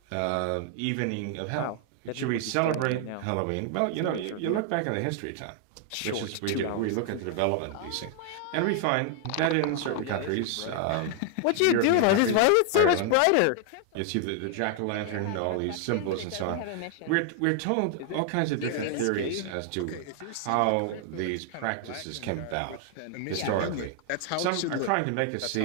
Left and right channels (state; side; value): different; both; correlation 0.00